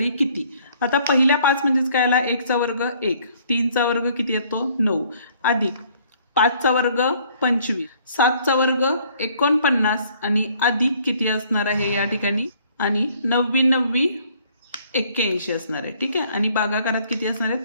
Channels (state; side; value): inverted; both; correlation -0.61